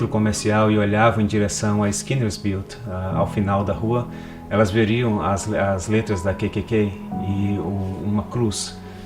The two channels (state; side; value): identical; both; correlation 1.00